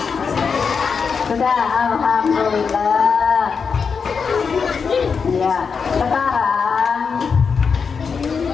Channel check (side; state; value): right; quieter; 5.7 dB